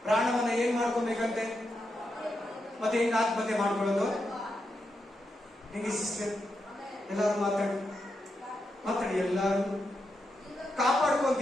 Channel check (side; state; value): both; normal; correlation 0.85